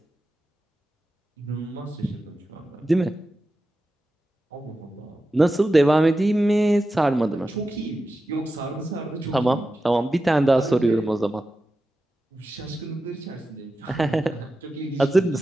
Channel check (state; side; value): normal; both; correlation 0.92